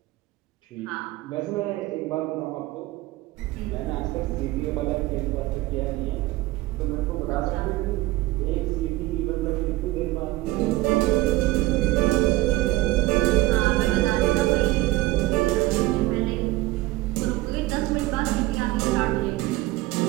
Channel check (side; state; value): left; quieter; 18.3 dB